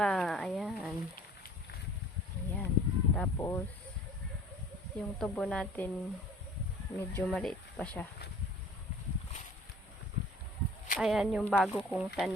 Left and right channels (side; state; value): both; normal; correlation 0.49